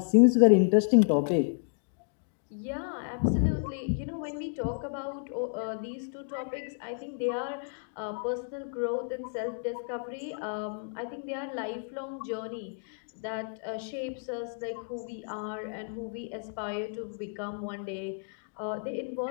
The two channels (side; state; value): right; silent; digital silence